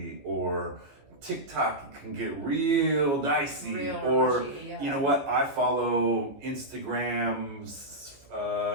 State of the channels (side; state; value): left; late; 15 ms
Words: or TikTok can get real dicey, Real or mushy, yeah. you know what? I follow Instagram's